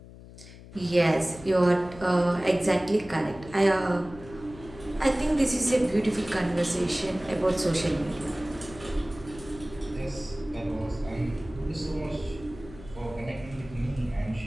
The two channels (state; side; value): noise; left; hum, 17 dB below the sound